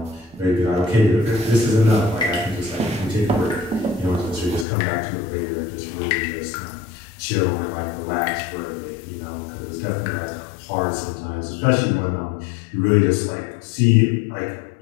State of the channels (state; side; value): drops out; right; at 4.7 s